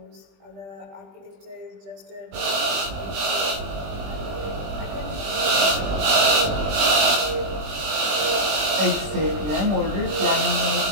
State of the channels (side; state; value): left; late; 20 ms